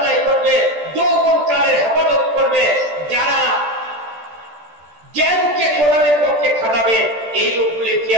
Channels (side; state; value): left; late; 14 ms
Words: করবে, যৌবন কালের হেফাজত করবে, যারা জ্ঞানকে কোরআনের পক্ষে খাটাবে, এই লোকগুলি